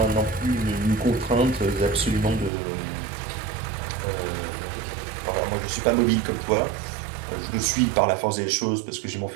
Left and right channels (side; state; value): left; drops out; at 2.5 s